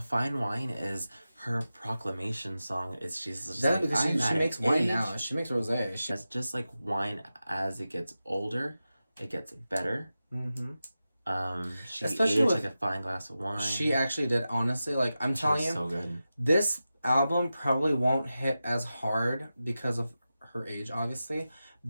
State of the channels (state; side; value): inverted; both; correlation -0.93